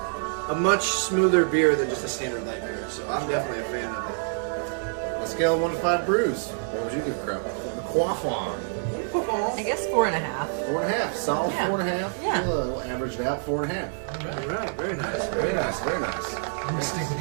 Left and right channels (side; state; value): left; silent; digital silence